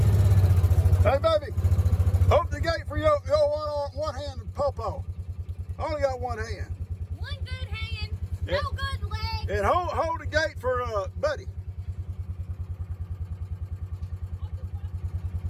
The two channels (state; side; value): identical; both; correlation 1.00